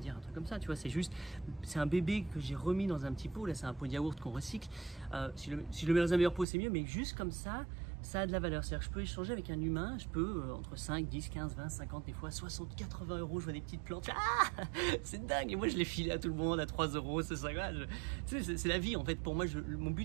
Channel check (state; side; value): drops out; left; at 6.5 s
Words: un truc comme ça, tu vois, c'est un bébé que j'ai remis dans un petit pot, là c'est un pot de yaourt qu'on recycle, si je le mets dans un meilleur pot c'est mieux, mais juste comme ça a de la valeur, c'est-à-dire que je peux échanger avec un humain, je peux entre 5, 10, 15, 20, 50, des fois 60, 80 euros, je vois des petites plantes, ah c'est dingue, et moi je les file à tout le monde à 3 euros, c'est ça, tu sais, c'est la vie en fait, pour moi, mon but